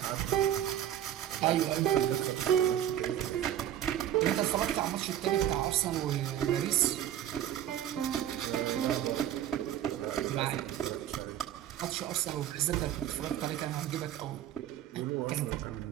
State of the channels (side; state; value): left; quieter; 11.4 dB